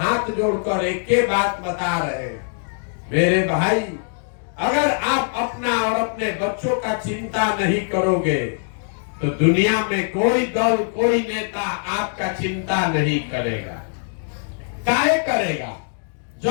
जोड़कर एक ही बात बता रहे हैं, मेरे भाई अगर आप अपना और अपने बच्चों का चिंता नहीं करोगे तो दुनिया में कोई दल कोई नेता आपका चिंता नहीं करेगा। काहे करेगा?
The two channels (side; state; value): right; silent; digital silence